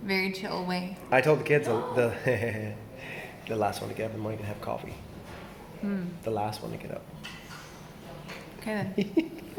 very chill way. I told the kids the the last one to get up in the morning to have coffee. The last one to get up. Okay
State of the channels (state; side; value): identical; both; correlation 1.00